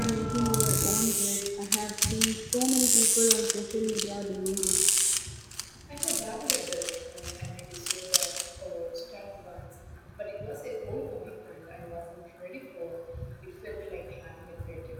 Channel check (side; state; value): both; identical; correlation 1.00